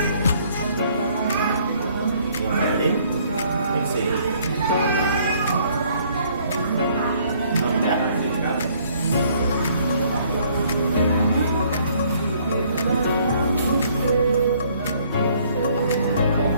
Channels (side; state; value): both; inverted; correlation -0.62